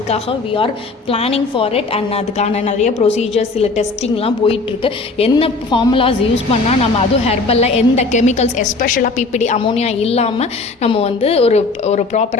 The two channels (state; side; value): quieter; right; 3.7 dB